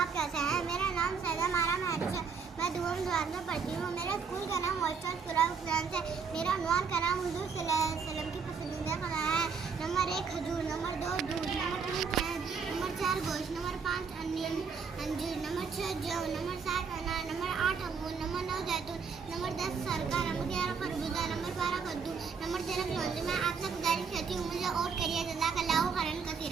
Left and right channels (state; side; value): quieter; left; 5.7 dB